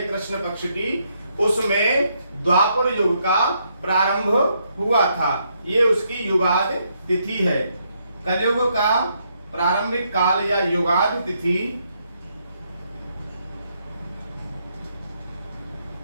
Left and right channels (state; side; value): inverted; both; correlation -0.75